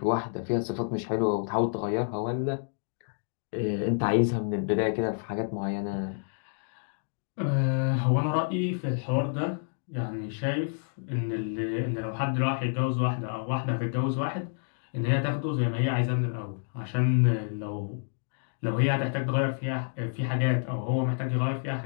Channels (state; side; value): silent; right; digital silence